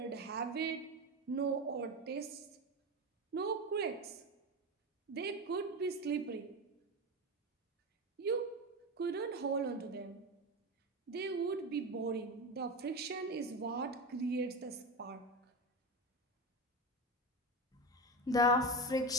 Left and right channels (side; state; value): both; normal; correlation 0.20